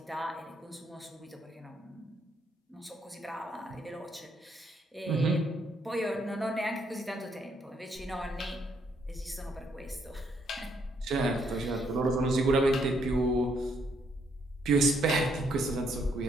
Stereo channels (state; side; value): normal; both; correlation 0.73